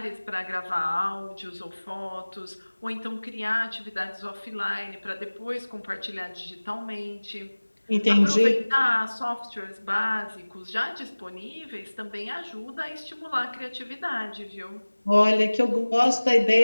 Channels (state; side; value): inverted; both; correlation -1.00